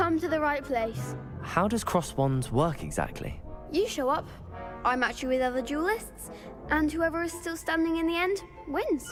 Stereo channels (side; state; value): both; identical; correlation 1.00